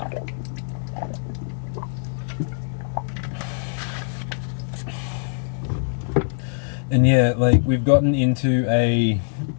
And yeah, like, we've gotten into a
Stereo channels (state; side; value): silent; right; digital silence